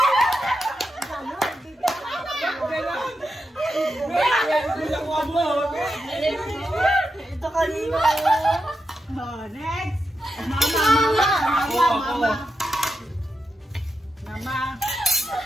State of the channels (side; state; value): both; normal; correlation 0.87